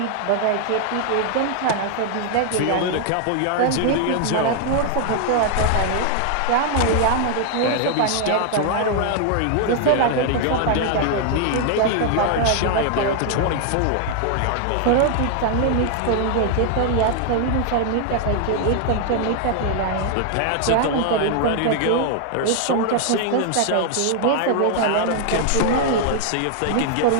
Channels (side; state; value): both; different; correlation 0.00